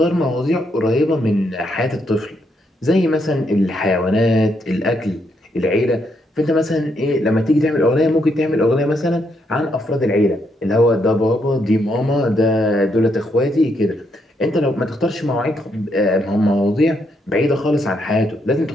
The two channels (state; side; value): normal; both; correlation 0.77